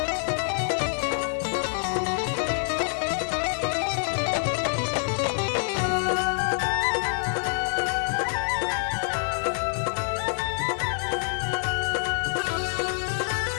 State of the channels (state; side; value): silent; right; digital silence